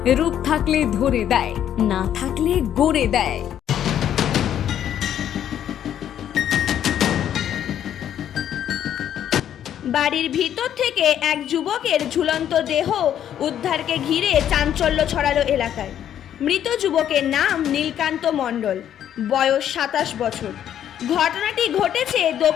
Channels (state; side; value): quieter; right; 10.2 dB